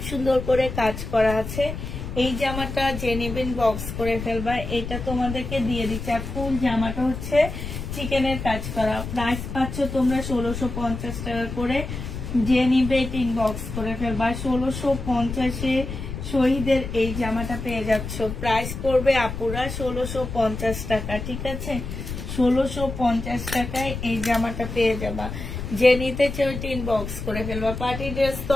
সুন্দর করে কাজ করা আছে। এই জামাটা যে নেবেন বক্স করে ফেলবা। এটা তোমাদেরকে দিয়ে দিচ্ছে। আর ফুল জামাটা হচ্ছে চিকেনের কাজ করা। প্রাইস পাচ্ছ তোমরা 1650 টাকা করে। যে নিবে এটা ইনবক্স করে ফেলবা। 1650-এ শহীদের এই জামাটা পেয়ে যাচ্ছ। প্রাইস পড়বে আপুরা 1650 টাকা, ঠিক আছে? 1650 টাকায় এই জামাটা পেয়ে যাবা। যে নিতে চাও ইনবক্স করে ফেলবা। পার্টি ড্রেস তো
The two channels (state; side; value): noise; left; rumble, 7 dB below the sound